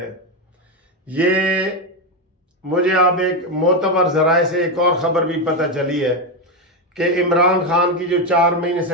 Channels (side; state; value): both; normal; correlation 0.09